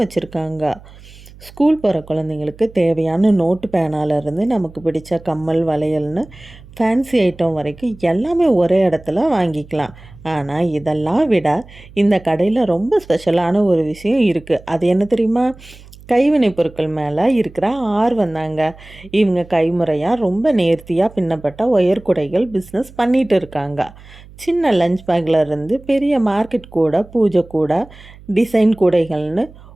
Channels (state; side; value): noise; right; hum, 21 dB below the sound